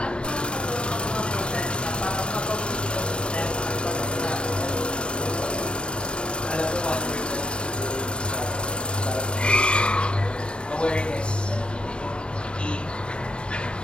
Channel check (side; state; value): right; late; 0.053 ms